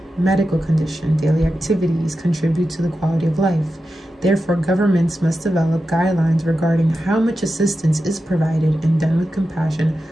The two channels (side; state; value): both; normal; correlation 0.91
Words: medical condition, daily activities contribute to the quality of life. Therefore, governments must develop guidelines regarding how much assistance is provided and done with compassion